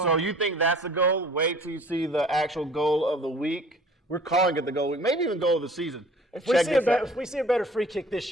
that's the goal. Wait till you see the actual goal of the week. We're calling it the goal of the week, maybe even goal of the season. If we see a better free kick this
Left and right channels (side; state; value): both; normal; correlation 0.50